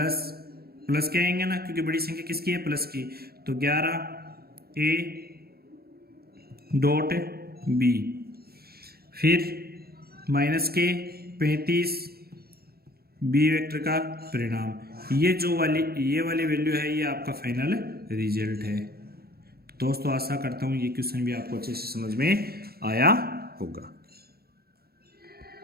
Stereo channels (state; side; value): late; left; 0.45 ms